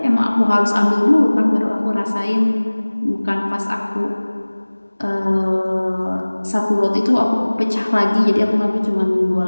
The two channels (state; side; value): inverted; both; correlation -1.00